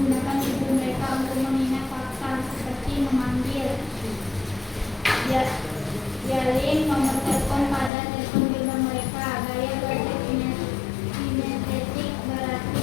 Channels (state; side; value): drops out; right; at 7.9 s